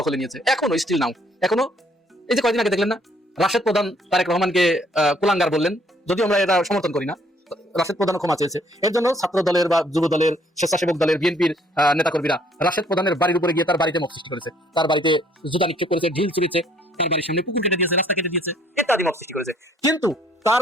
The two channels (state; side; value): normal; both; correlation 0.63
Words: দখলে নিয়েছে, এখনো স্টিল নাও। এখনো এই যে কয়েকদিন আগে দেখলেন না রাশেদ প্রধান তারেক রহমানকে কুলাঙ্গার বললেন, যদিও আমরা এটা সমর্থন করি না। রাশেদ প্রধান ক্ষমা চেয়েছে, এর জন্য ছাত্র দলের বা যুব দলের, স্বেচ্ছাসেবক দলের, বিএনপির নেতাকর্মীরা রাশেদ প্রধানের বাড়ির উপরে গিয়ে তার বাড়িতে মত সৃষ্টি করেছে, তার বাড়িতে জুতা নিক্ষেপ করেছে, ঢিল ছুড়েছে, তার বাড়ির সামনে পুকুর কেটে দিয়েছে, রাস্তা কেটে দিয়েছে, ইত্যাদি মত সৃষ্টি করেছে। কিন্তু তার